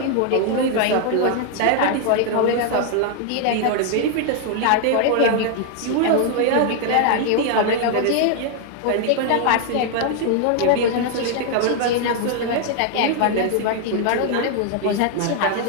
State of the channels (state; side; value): different; both; correlation 0.00